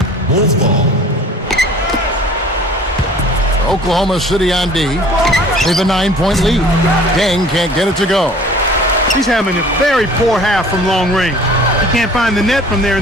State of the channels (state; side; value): normal; both; correlation 0.48